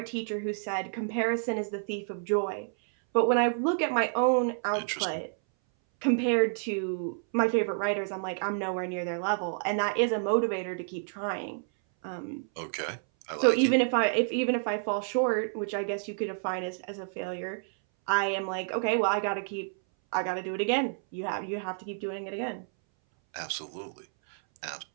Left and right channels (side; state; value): left; silent; 58 dB below the other